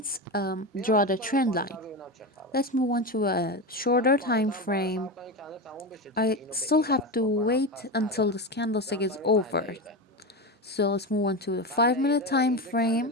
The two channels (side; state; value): both; normal; correlation 0.19